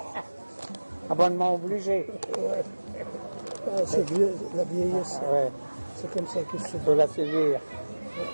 Abonnement obligé. Ouais. Ah, c'est la vieillesse. Ouais. C'est comme ça qu'il se Il faut la suivre.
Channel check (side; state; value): both; inverted; correlation -1.00